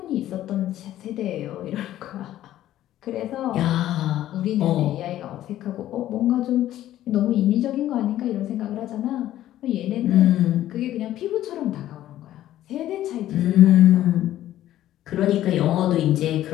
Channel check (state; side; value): quieter; right; 13.2 dB